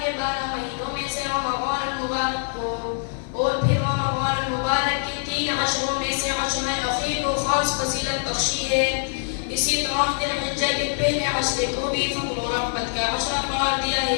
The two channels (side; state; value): right; silent; digital silence